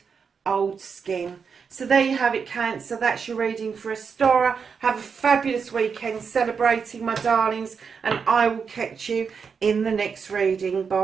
old skin. So there you have it, Cancer. That's your reading for OSTARA. Have a fabulous weekend celebrating, my darlings, and I will catch you in the next reading.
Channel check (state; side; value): quieter; left; 6.0 dB